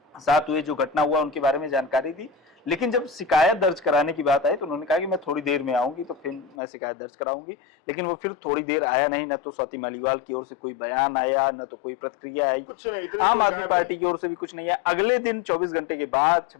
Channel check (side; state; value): right; drops out; at 6.6 s